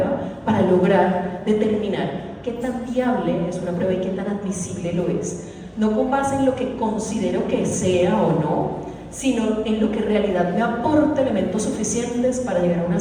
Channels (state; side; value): identical; both; correlation 1.00